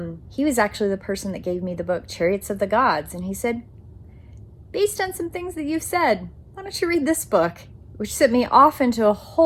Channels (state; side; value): identical; both; correlation 1.00